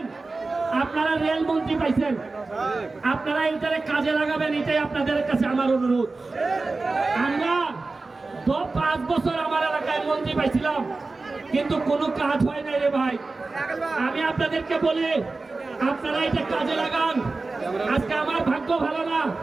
আপনারা রেল মন্ত্রী পাইছেন, আপনারা এইটারে কাজে লাগাবেন, এটাই আপনাদের কাছে আমার অনুরোধ। আমরা 5 বছর আমার এলাকায় মন্ত্রী পাইছিলাম, কিন্তু কোনো কাজ হয় নাই রে ভাই। আমি আপনাদেরকে বলি আপনারা এটা কাজে লাগান। আজকে আমার ভাগ্য ভালো না,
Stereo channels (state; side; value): quieter; left; 3.6 dB